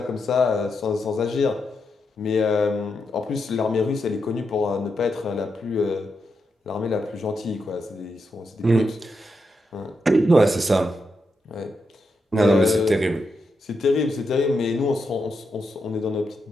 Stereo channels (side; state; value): both; normal; correlation 0.84